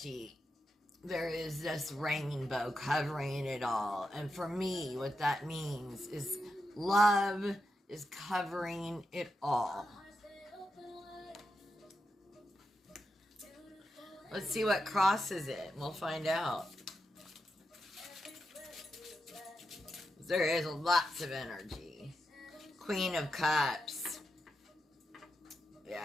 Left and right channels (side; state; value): both; normal; correlation 0.87